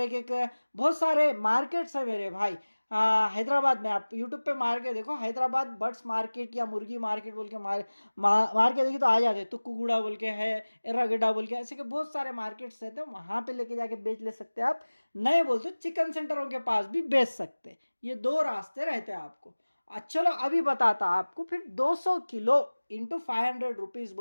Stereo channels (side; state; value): both; inverted; correlation -1.00